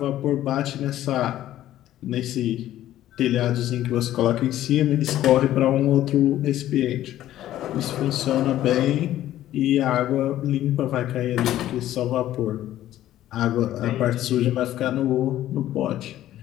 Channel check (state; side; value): quieter; right; 13.3 dB